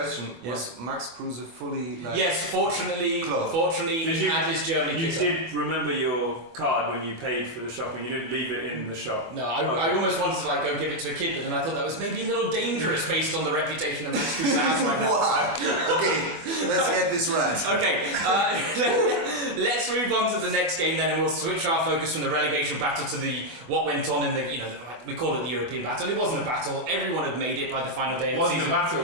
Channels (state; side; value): late; left; 24 ms